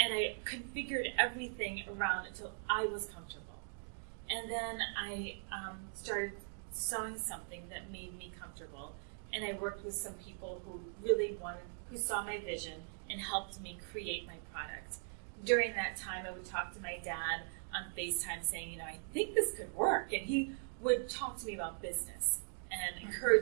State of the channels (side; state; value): left; silent; digital silence